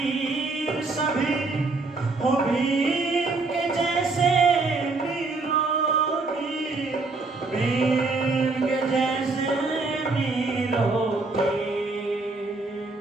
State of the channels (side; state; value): left; quieter; 3.7 dB